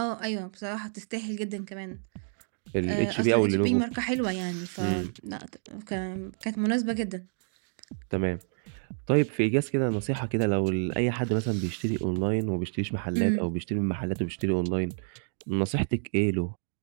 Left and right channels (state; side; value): silent; left; digital silence